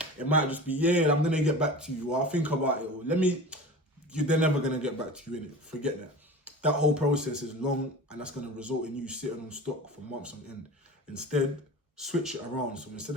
It might just be, yeah, I'm gonna get back to you, or I'll think about it, or they're never gonna get back to you, innit? Forget that. That whole process is long, and that's gonna result in you sitting on stock for months on end. Instead, switch it around. So instead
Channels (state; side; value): normal; both; correlation 0.34